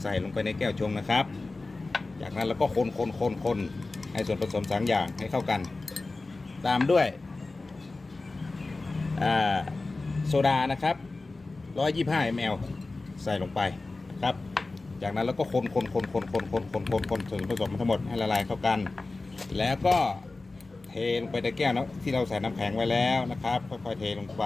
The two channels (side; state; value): right; quieter; 3.4 dB